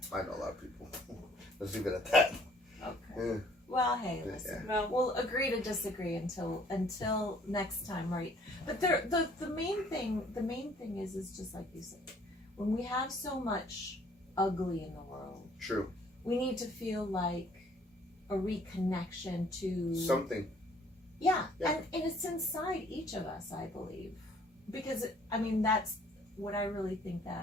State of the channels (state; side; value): normal; both; correlation 0.58